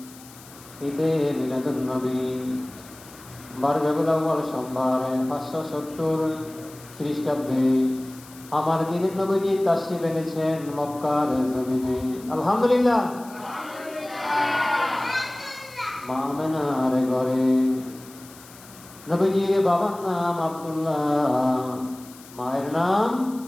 ঈদে মিলাদুন নবী 12 রবিউল আউয়াল সোমবার 570 খ্রিস্টাব্দে আমার দিনের নবীজি তাশরীফ এনেছেন মক্কার জমিনে আলহামদুলিল্লাহ। মা আমেনার ঘরে নবীজির বাবার নাম আব্দুল্লাহ, মায়ের নাম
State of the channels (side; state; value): left; noise; hiss, 20 dB below the sound